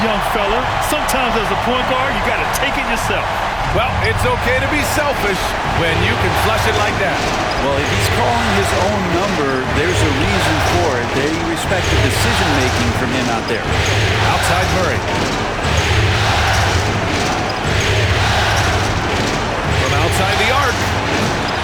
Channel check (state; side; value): identical; both; correlation 1.00